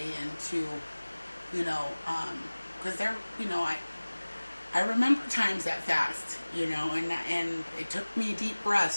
into, you know, because they're, you know, I remember times that fast, you know, and it took me deep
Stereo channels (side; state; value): both; inverted; correlation -1.00